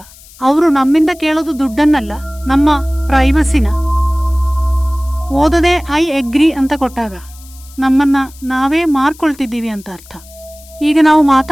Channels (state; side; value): noise; left; hiss, 23 dB below the sound